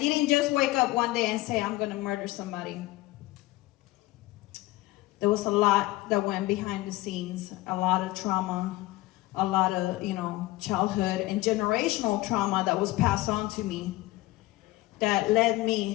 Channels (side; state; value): right; quieter; 18.5 dB